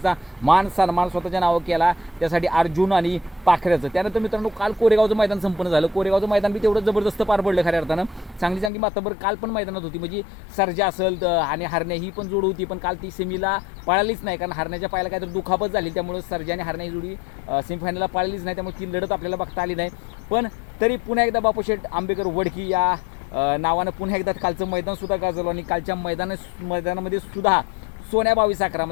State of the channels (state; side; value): drops out; right; at 8.7 s